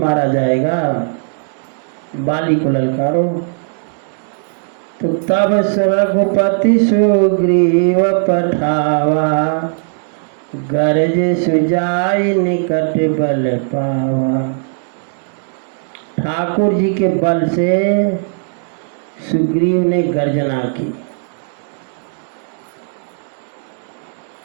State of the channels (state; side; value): silent; left; digital silence